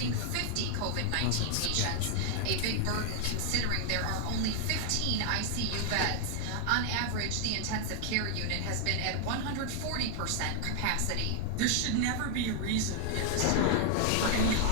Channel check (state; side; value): different; both; correlation 0.00